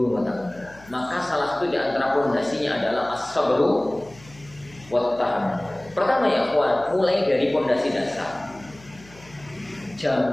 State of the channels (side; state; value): left; noise; hum, 23 dB below the sound